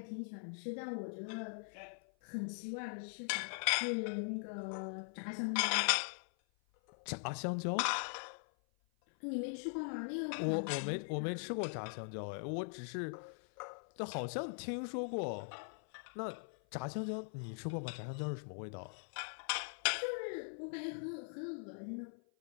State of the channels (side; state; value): right; silent; 50 dB below the other